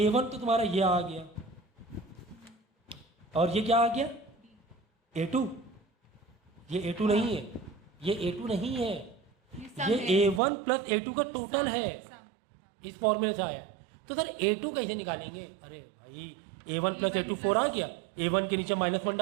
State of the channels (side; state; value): left; drops out; at 10.4 s